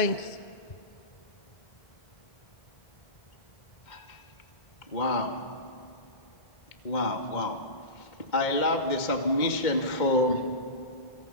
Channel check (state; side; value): late; right; 2.1 ms